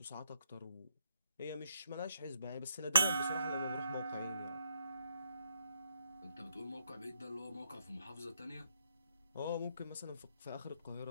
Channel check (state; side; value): inverted; both; correlation -0.76